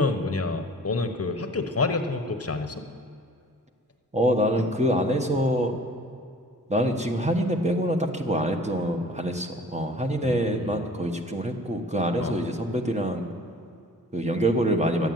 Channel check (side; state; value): both; normal; correlation 0.49